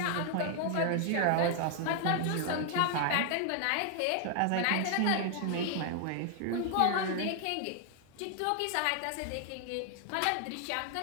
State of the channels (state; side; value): different; both; correlation 0.00